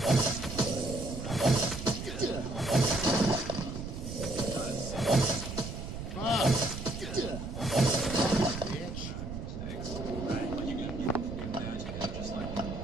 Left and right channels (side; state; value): right; noise; rumble, 7 dB below the sound